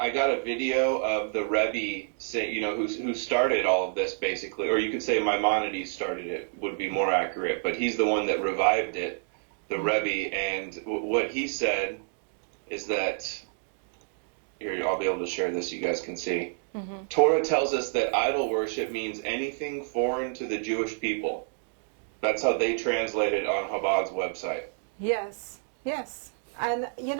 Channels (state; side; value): silent; left; digital silence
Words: got a video of the Rebbe say, who started all of this basically, or you could say Maimonides started it, would be more accurate, but he's the one that revived it, the Rebbe, and what he said is that, here, I'll be able to share this, you guys can see. Mm-hmm. Torah tells us that idol worship means anything foreign to the Jewish people. That's how they translate it on Chabad's website. Yes. And,